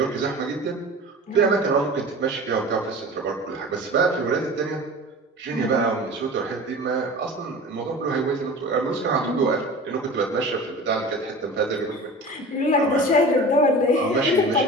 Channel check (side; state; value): both; normal; correlation 0.37